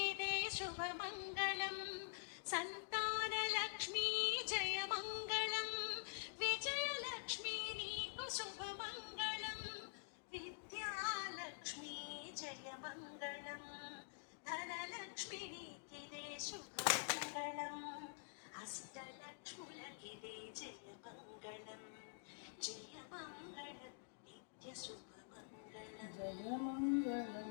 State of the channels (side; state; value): right; silent; digital silence